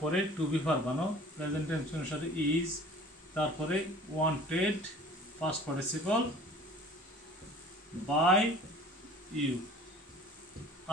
টু বি ভার্ব বানাও, প্রেজেন্ট টেন্স অনুসারে ইজ, তারপরে wanted past participle by you.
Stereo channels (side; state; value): both; normal; correlation 0.46